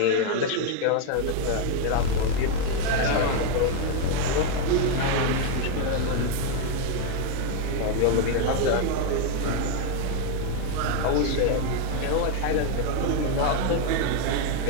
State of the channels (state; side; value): different; both; correlation 0.01